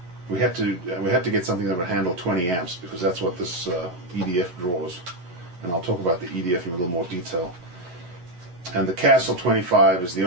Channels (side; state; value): left; late; 11 ms